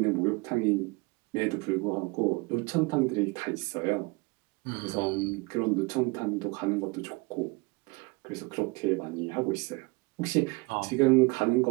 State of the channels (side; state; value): left; quieter; 25.9 dB